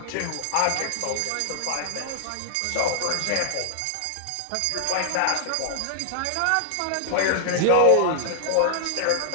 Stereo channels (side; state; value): both; different; correlation -0.01